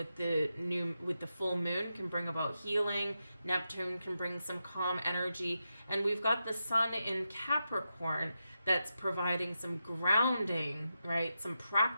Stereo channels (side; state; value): both; inverted; correlation -0.88